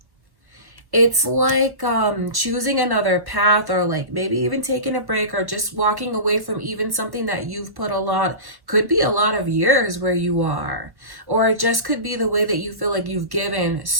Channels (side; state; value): left; late; 1.3 ms